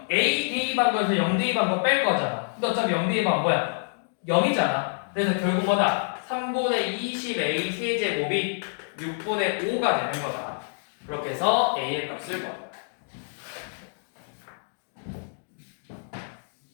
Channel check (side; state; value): right; silent; digital silence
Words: a 대입한 거에서 0 대입한 거 뺄 거잖아. 근데 어차피 0 대입한 뭐야? 0이잖아. 그래서 결국 뭐다? 3분의 20a 세제곱이 6분의 5가 되는 거다. 그렇게 해서 a의 값을 구한다.